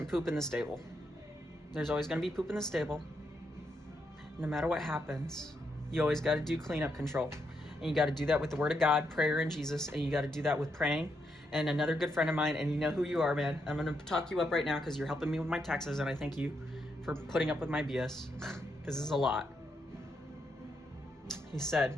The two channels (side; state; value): both; normal; correlation 0.80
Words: poop in the stable. There's always going to be poop in the stable. No matter what happens, you always got to do cleanup control. And you got to do that with the Word of God, prayer, and Jesus. And you got to do that with praying. And another good friend of mine, and you know who you are, man. I'm going to talk you up right now because you're helping me with my taxes. And I thank you for putting up with my BS because this is a lot. He